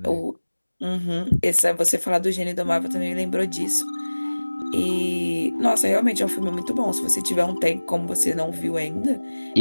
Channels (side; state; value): both; inverted; correlation -1.00